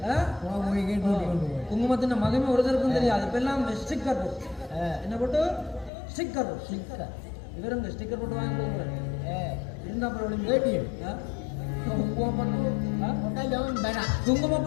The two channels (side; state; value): right; drops out; at 5.9 s